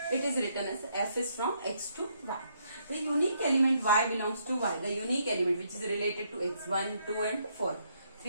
It is written as f is from x to y. The unique element y belongs to y, the unique element which is related to x, 1, 2 and 4.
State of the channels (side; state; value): both; inverted; correlation -0.73